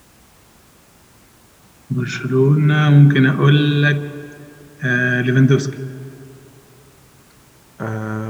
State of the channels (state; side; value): identical; both; correlation 1.00